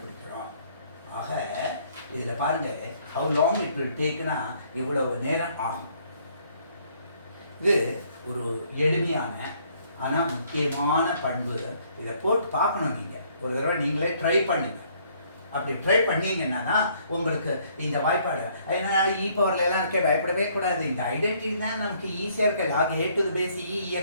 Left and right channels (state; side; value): inverted; both; correlation -0.64